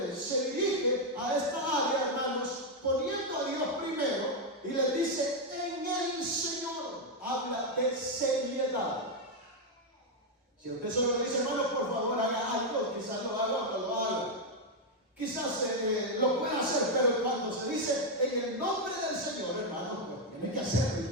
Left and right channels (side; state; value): both; normal; correlation 0.02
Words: Se dirige a esta área, hermanos, poniendo a Dios primero. Y le dice: en el Señor. Habla de seriedad. Si usted solo le dice: hermano, por favor, haga algo, quizás lo haga o no lo haga. Quizás lo pueda hacer, pero cuando se dice en el nombre del Señor, hermano, pues tiene que hacerlo y